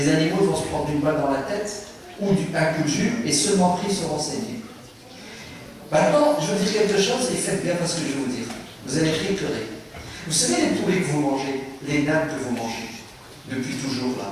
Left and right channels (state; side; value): identical; both; correlation 1.00